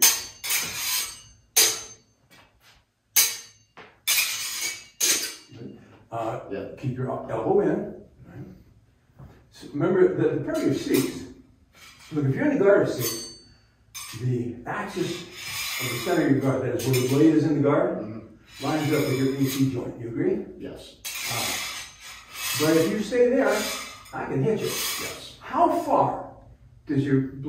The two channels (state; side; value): identical; both; correlation 1.00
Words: Keep your elbow in. Right? So remember the parry of 6. Look, if you're in the guard of 6, the axis of the center of your guard, that is where the blade is in the guard, lines up with your AC joint. You agree? Yes. But if you stay there, I can hit you. Yes. How far does your